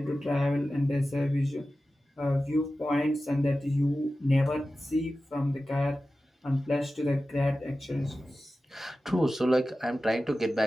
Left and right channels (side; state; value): both; normal; correlation 0.94